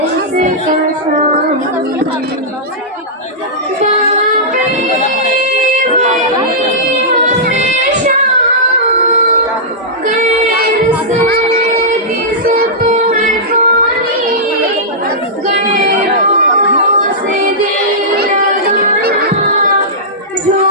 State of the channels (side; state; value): both; normal; correlation -0.14